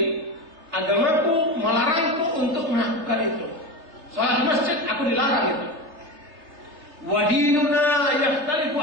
Agamaku melarangku untuk melakukan itu. Salat di masjid aku dilarang itu. Wa dinuna yakhtalifu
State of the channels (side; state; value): left; late; 3.3 ms